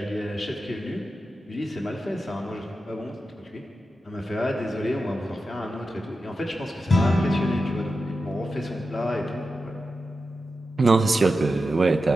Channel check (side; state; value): both; normal; correlation 0.91